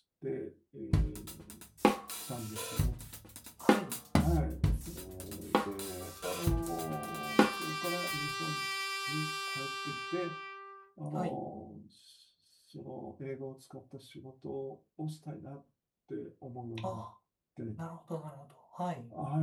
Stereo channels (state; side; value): identical; both; correlation 1.00